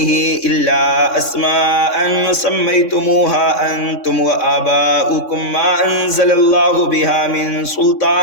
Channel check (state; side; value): late; right; 3.6 ms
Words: إلا أسماء سميتموها أنتم وآباؤكم ما أنزل الله بها من